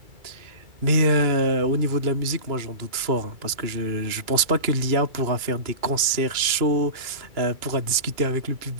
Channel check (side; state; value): left; late; 2.3 ms